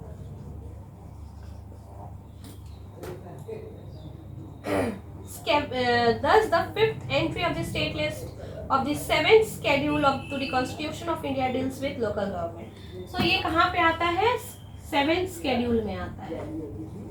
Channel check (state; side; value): identical; both; correlation 1.00